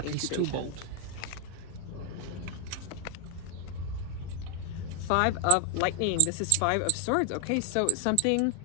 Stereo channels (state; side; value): different; both; correlation 0.00